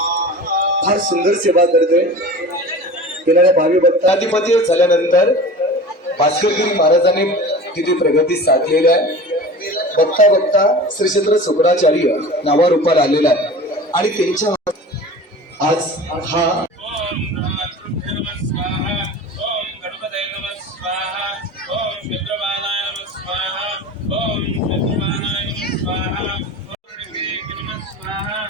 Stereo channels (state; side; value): normal; both; correlation 0.36